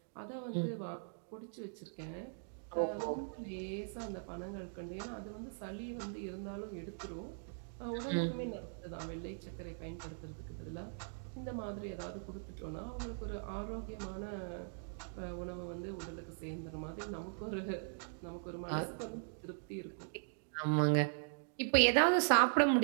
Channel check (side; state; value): left; silent; digital silence